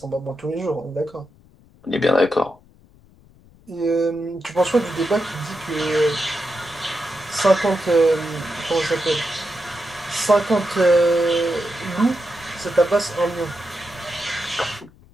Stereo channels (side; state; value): left; noise; rumble, 27 dB below the sound